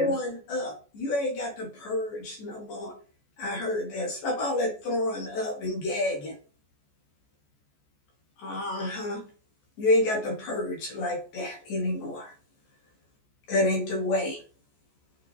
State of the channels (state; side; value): late; right; 14 ms